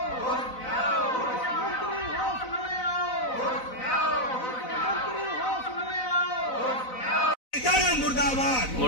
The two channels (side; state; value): right; late; 4.0 ms